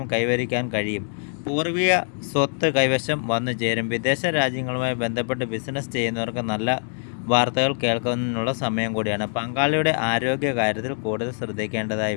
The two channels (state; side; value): silent; right; 57 dB below the other